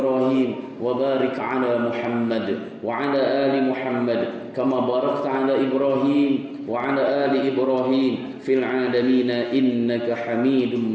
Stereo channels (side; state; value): both; identical; correlation 1.00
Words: wa barik ala Muhammad wa ala ali Muhammad kama barakta ala Ibrahim wa ala ali Ibrahim fil alamin innaka Hamidum